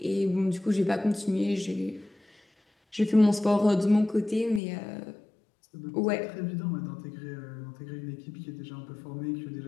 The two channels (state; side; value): drops out; right; at 4.6 s